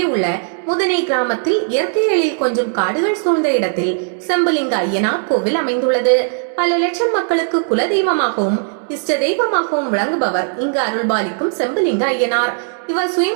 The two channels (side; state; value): left; silent; 68 dB below the other